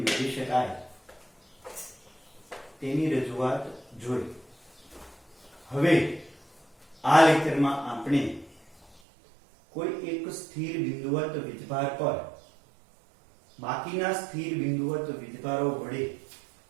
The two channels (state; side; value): drops out; left; at 9.0 s